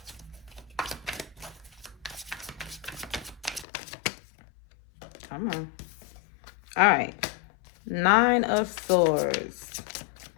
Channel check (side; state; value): right; drops out; at 3.7 s